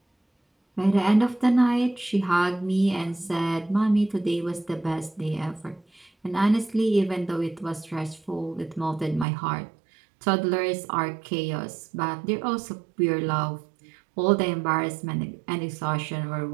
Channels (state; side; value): drops out; left; at 9.2 s